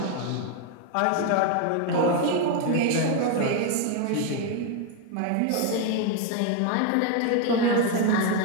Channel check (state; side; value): different; both; correlation 0.01